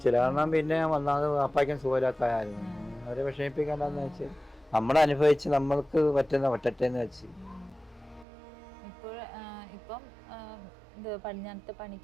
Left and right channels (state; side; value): drops out; left; at 8.2 s